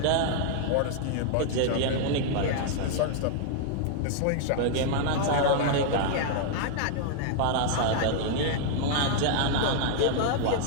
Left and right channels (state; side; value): different; both; correlation -0.01